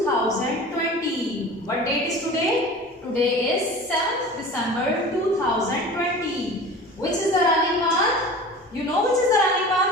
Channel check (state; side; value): normal; both; correlation 0.38